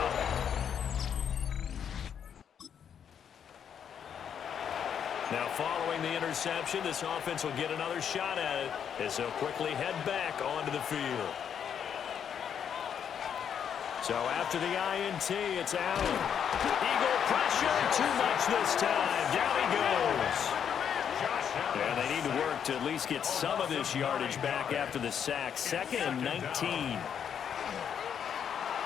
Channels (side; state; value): right; quieter; 8.2 dB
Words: Now following the interception, this offense will get another shot at it as they'll quickly head back onto the field. So after the INT, it's Allen. Eagle pressure, too much this time. Down he goes. And they need to work to at least get some of this yardage back after the sack. 2nd and 19.